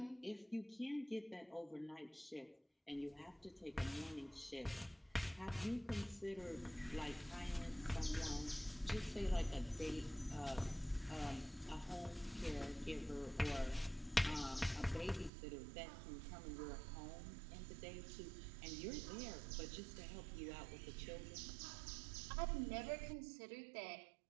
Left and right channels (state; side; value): drops out; left; at 15.3 s